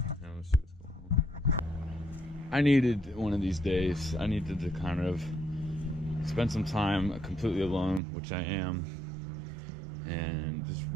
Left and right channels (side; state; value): left; drops out; at 8.0 s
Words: let's see what's going on. I needed one of these days. I needed to kind of spend some time completely alone, which I am, and just